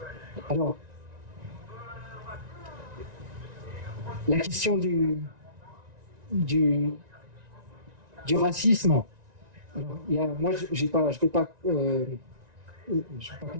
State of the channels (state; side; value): late; left; 1.9 ms